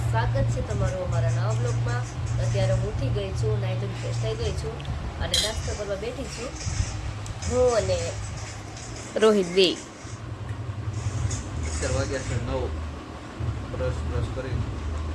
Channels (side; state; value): both; identical; correlation 1.00